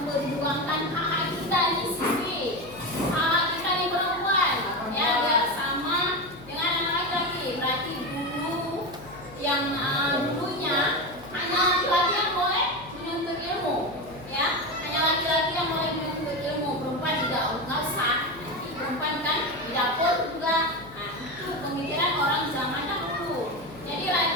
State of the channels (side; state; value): left; noise; hum, 18 dB below the sound